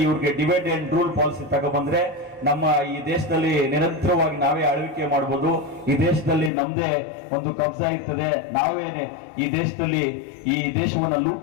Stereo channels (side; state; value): right; drops out; at 6.5 s